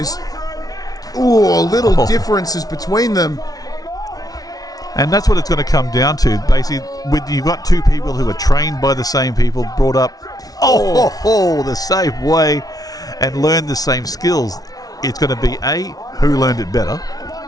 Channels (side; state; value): right; late; 0.18 ms